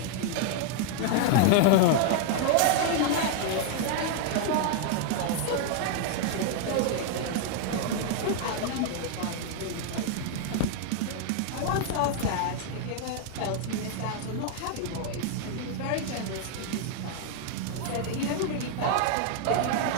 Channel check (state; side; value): different; both; correlation 0.00